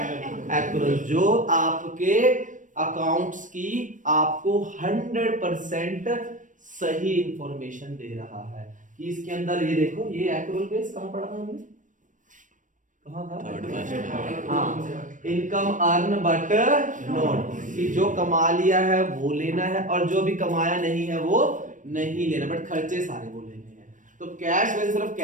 एक्यूरल, जो आपके अकाउंट्स की आपको 100% सही इंफॉर्मेशन दे रहा है कि इसके अंदर ये देखो, ये एक्यूरल बेस कहां पढ़ा था हमने? कहां था? हाँ, इनकम अर्न बट नॉट, कि जो कमा लिया है वो लेना है और जो भी कमाया नहीं है वो नहीं लेना, बट खर्चे सारे वो लेने हैं। तो कैश वैसे सिर्फ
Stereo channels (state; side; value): late; left; 0.37 ms